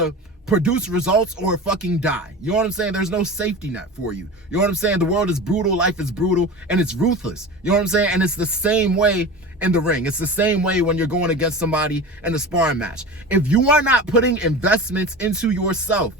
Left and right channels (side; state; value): both; normal; correlation 0.31